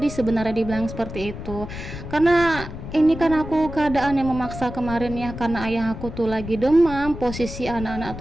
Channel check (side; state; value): left; noise; rumble, 10 dB below the sound